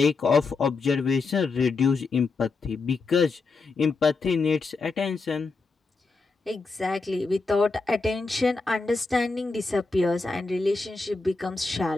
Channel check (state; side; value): quieter; right; 4.0 dB